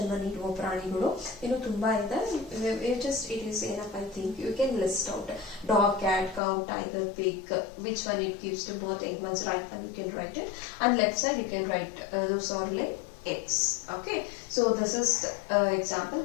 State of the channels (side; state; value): right; drops out; at 6.4 s